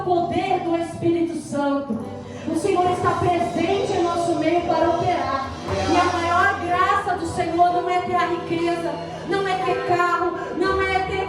do Espírito Santo. O Senhor está presente em nosso meio para operar. E a maior graça do Senhor não é ter a riqueza, não é ter carro, não é ter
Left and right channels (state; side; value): identical; both; correlation 1.00